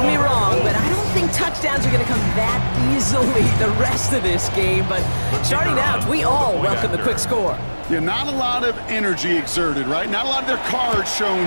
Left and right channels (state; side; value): inverted; both; correlation -1.00